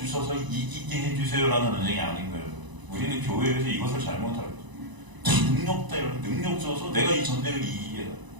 이기게 해주세요라는 전쟁이 아닌 거예요. 우리는 교회에서 이것을 잘못하고 능력 때문에 능력 줘서 내가 이 전쟁을 이기게 해.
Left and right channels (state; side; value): late; left; 1.0 ms